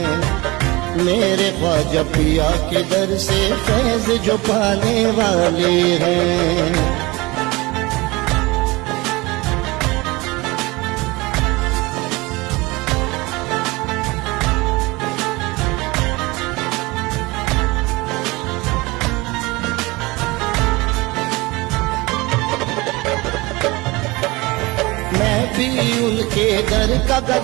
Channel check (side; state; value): left; quieter; 22.9 dB